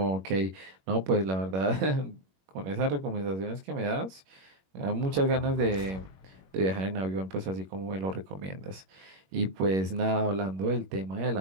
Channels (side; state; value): left; late; 21 ms